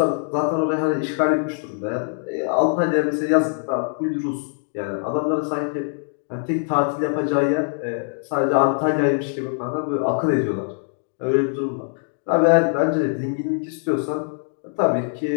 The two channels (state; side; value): silent; right; 64 dB below the other